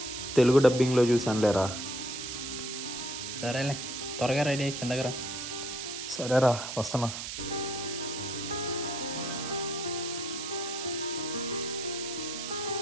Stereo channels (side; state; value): right; noise; hiss, 6 dB below the sound